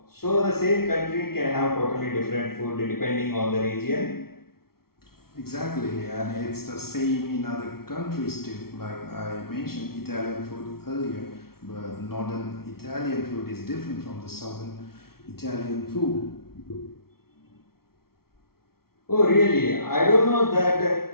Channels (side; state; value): right; late; 0.94 ms